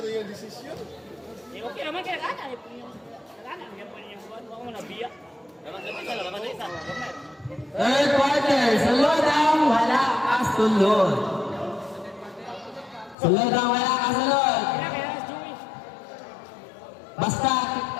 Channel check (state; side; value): drops out; right; at 13.2 s